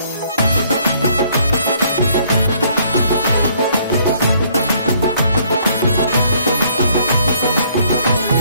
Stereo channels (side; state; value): both; inverted; correlation -0.64